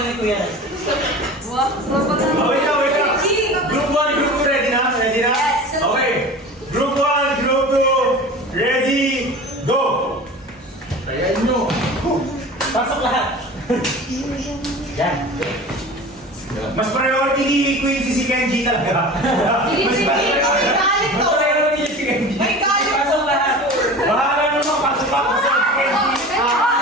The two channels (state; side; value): normal; both; correlation 0.36